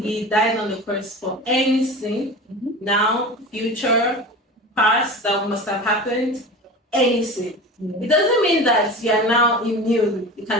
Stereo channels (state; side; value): normal; both; correlation 0.32